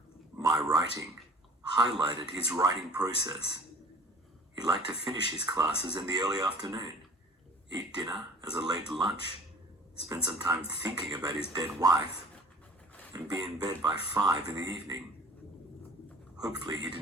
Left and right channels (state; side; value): normal; both; correlation 0.47